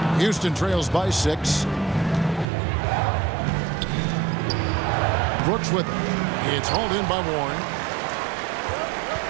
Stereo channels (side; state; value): left; drops out; at 2.5 s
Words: Houston trails by 6. Brooks with it. It's hauled in by Warren.